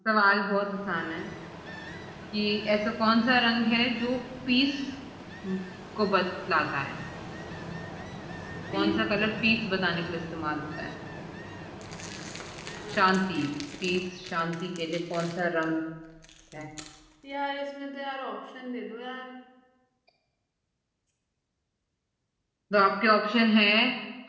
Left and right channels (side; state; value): both; identical; correlation 1.00